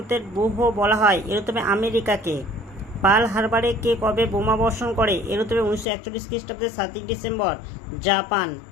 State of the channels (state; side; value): drops out; right; at 5.9 s